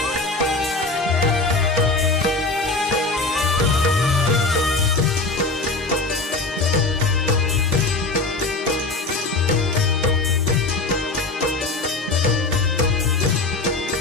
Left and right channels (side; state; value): right; quieter; 3.5 dB